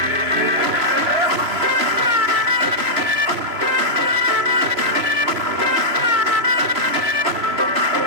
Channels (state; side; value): late; left; 3.0 ms